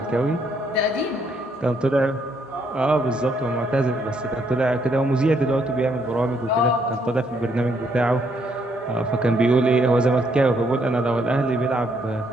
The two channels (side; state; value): both; normal; correlation 0.72